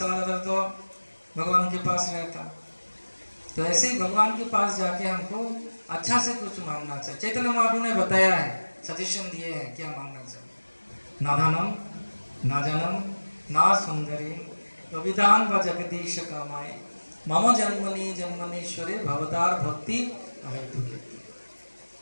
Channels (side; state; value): both; inverted; correlation -1.00